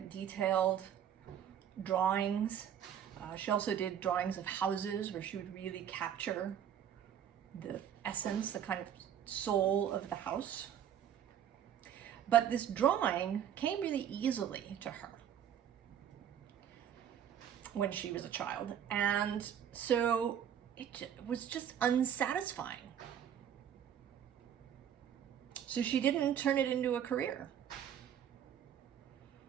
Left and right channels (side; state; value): left; quieter; 9.4 dB